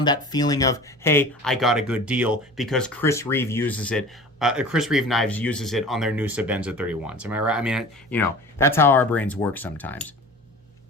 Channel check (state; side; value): normal; both; correlation 0.39